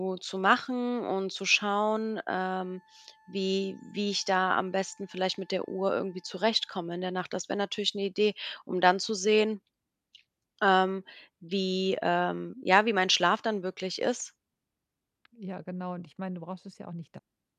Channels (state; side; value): identical; both; correlation 1.00